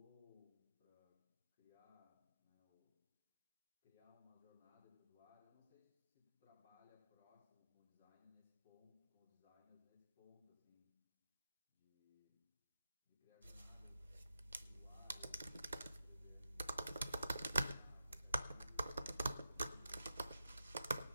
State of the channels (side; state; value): both; inverted; correlation -0.89